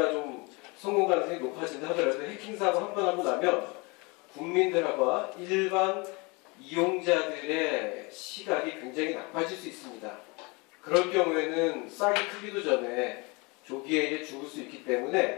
좀 성공 가능성이 높아진다 하더라도 해킹 사고 한 번 하고 나면 국민들하고 일반 이용자들의 시각이 굉장히 나빠질 수 있습니다. 그럴 경우에는 싹이 크기도 전에 조기에 죽을 수 있기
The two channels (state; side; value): quieter; right; 28.0 dB